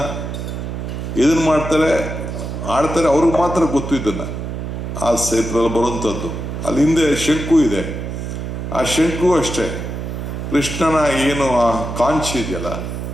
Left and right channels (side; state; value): right; noise; hum, 5 dB below the sound